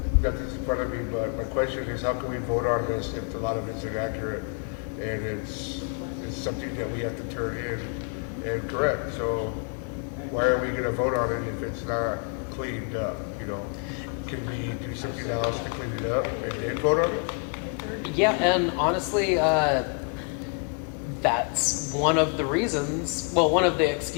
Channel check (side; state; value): right; quieter; 38.9 dB